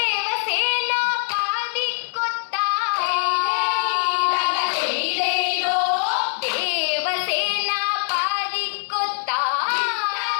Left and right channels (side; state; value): right; silent; digital silence